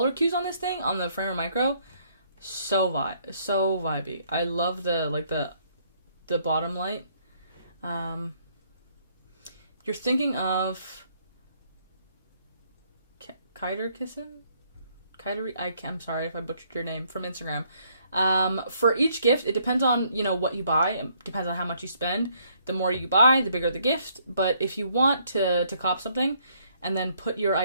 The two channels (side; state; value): both; inverted; correlation -0.68